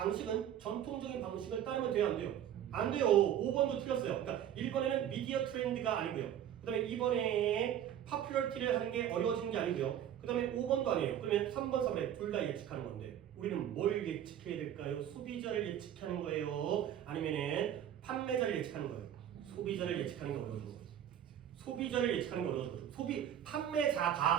전통적인 방식을 따르면 돼요? 안 돼요? 안 돼요. 5번도 틀렸어요. 그러니까 1번에는 미디어 트렌드가 아니고요. 그 다음에 2번에 파퓰러티를 하는 게 어려워지는 게 아니고요. 그 다음에 5번도 아니에요. 그러면 3번, 4번에 둘 다 예측하는 건데 우리는 뭘 예측해야 될까요? 소비자를 예측하는 거예요? 아니면은 판매자를 예측하는 거예요? 소비자를 예측하는 게 어려워진 거예요. 소비자를 예측하는 게 어려워진 거죠.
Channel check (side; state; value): left; quieter; 10.4 dB